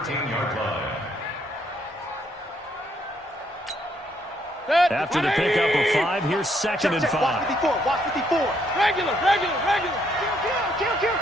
line. After the pickup of 5, here's 2nd and 5. Watch 54. Regular. Kill.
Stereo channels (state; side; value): normal; both; correlation 0.71